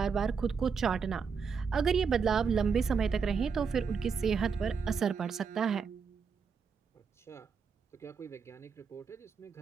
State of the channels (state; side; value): quieter; left; 5.8 dB